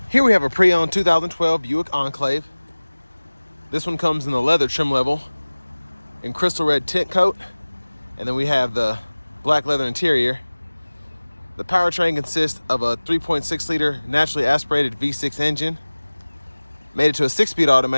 Here we have a pre-owned 2012 Buick Enclave. This one comes in the leather trim level in crystal red tint coat, and then we have the black leather interior. The powertrain consists of a 3.6 liter naturally aspirated V6 engine, made it to a 6-speed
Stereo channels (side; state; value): both; inverted; correlation -1.00